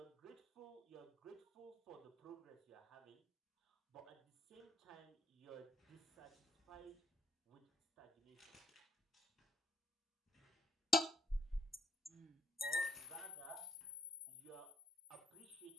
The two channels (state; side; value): normal; both; correlation 0.68